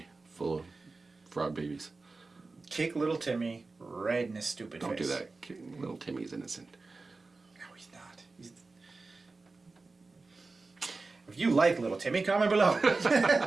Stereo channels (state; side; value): quieter; left; 3.7 dB